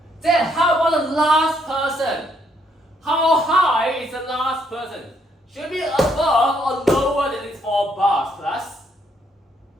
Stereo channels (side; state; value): both; normal; correlation 0.71